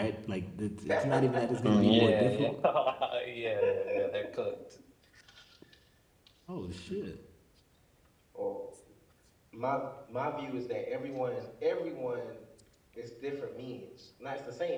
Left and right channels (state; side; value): identical; both; correlation 1.00